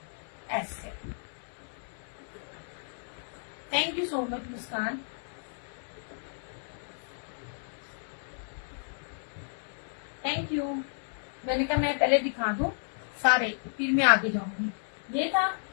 ऐसे। Thank you so much Muskan. Thank you. मैंने कहा मैं पहले दिखा दूं सारे, फिर मैं आगे जाऊंगी। ये था,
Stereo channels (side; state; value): right; silent; 56 dB below the other